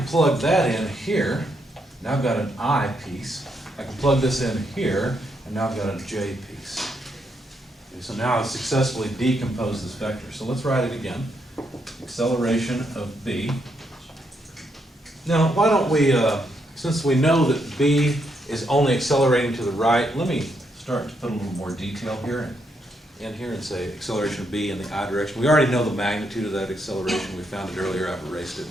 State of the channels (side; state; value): both; normal; correlation 0.78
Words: plug that in here. Now I've got an I piece. I can plug this in here, and now I've got a j piece. Okay, so now I've successfully decomposed this vector. So let's write it again. Acceleration of b. Now, why don't we, since we know that b is only accelerating to the right, let me start to put a little more detail here in here and say acceleration of b in the I direction. We already know the magnitude of that acceleration. We found it earlier. I've erased it,